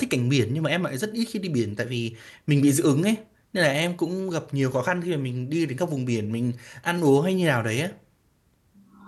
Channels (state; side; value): identical; both; correlation 1.00